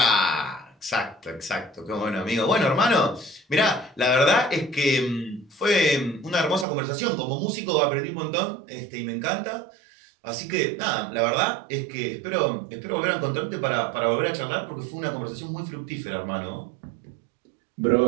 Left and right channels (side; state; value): left; drops out; at 6.7 s